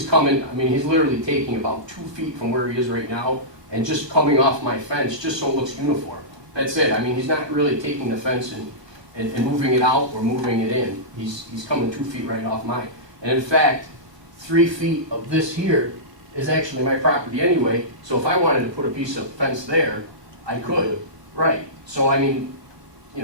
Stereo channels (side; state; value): left; late; 1.3 ms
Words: literally taking about 2 feet from where he is right now and just coming off my fence, just so it looks uniform. That's it. I mean, he's not really taking the fence and moving it out or moving it in. He's coming 2 feet right off mine. And in fact, 3 feet of this here is actually my property anyway, so if I wanted to put a piece of fence there, I could. Right. So I mean,